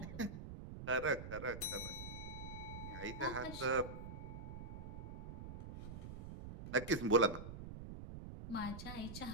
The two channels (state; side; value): noise; right; rumble, 9 dB below the sound